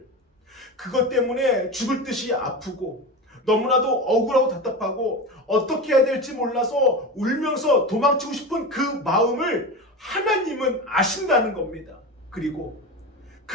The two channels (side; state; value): both; normal; correlation 0.24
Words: 그것 때문에 죽을 듯이 아프고 너무나도 억울하고 답답하고 어떻게 해야 될지 몰라서 울면서 도망치고 싶은 그 마음을 하나님은 아신다는 겁니다. 그리고